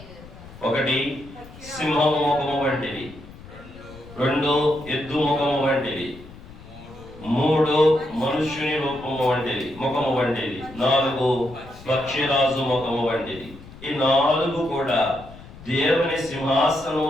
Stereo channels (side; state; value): left; noise; rumble, 18 dB below the sound